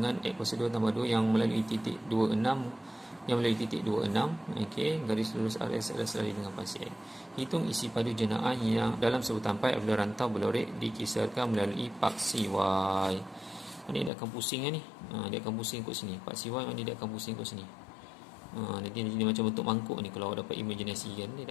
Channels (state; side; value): drops out; right; at 14.1 s